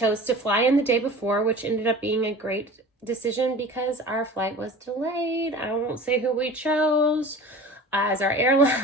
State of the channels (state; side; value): normal; both; correlation 0.39